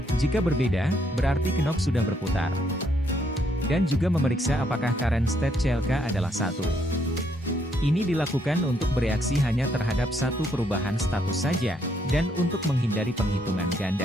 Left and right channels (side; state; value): both; normal; correlation 0.72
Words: Jika berbeda, berarti knop sudah berputar. Dan juga memeriksa apakah current state CLK adalah 1. Ini dilakukan untuk bereaksi hanya terhadap satu perubahan status saja, dan untuk menghindari penghitungan